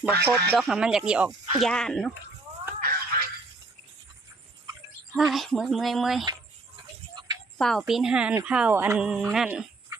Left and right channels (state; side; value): quieter; left; 3.3 dB